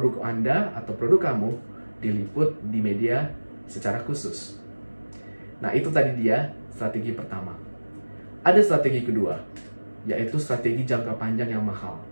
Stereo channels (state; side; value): inverted; both; correlation -1.00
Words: Anda atau produk kamu diliput di media secara khusus. Nah, itu tadi dia strategi pertama. Ada strategi kedua, yaitu strategi jangka panjang yang mahal.